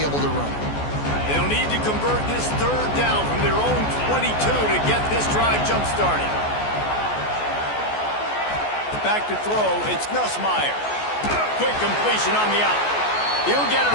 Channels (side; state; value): right; late; 14 ms